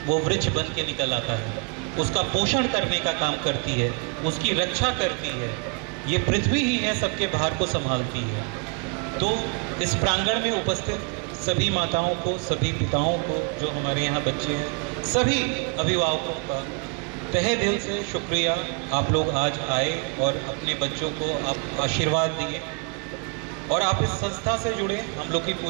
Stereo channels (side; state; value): left; quieter; 34.3 dB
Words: वो वृक्ष बन के निकल आता है, उसका पोषण करने का काम करती है, उसकी रक्षा करती है। ये पृथ्वी ही है, सबके भार को संभालती है। तो इस प्रांगण में उपस्थित सभी माताओं को, सभी पिताओं को, जो हमारे यहाँ बच्चे हैं, सभी अभिभावकों का तहे दिल से शुक्रिया। आप लोग आज आए और अपने बच्चों को आप आशीर्वाद दिए और आप इस संस्था से जुड़े। हम लोग की